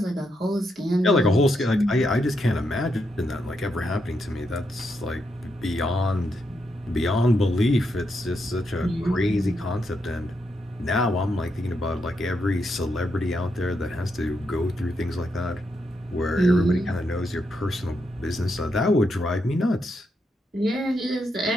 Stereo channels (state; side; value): normal; both; correlation 0.81